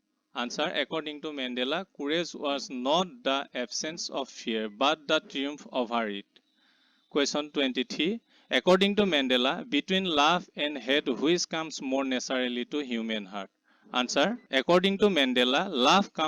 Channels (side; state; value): both; identical; correlation 1.00